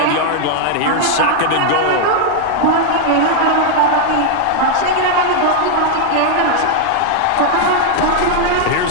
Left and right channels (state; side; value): different; both; correlation 0.00